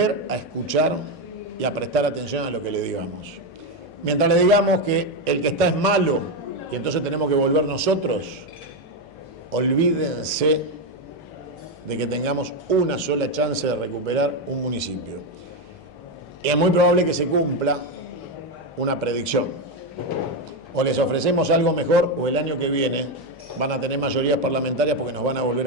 a escuchar y a prestar atención a lo que le digamos. Mientras le digamos que el que está es malo y entonces tenemos que volver nosotros, olvídense de que tengamos una sola chance de recuperar un municipio. Y es muy probable que se cumpla una predicción. O les ofrecemos algo mejor o el año que viene van a tener mayorías parlamentarias porque nos van a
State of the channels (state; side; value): noise; left; hum, 27 dB below the sound